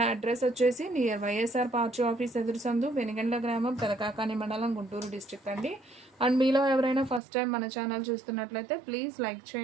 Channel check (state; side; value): drops out; left; at 7.2 s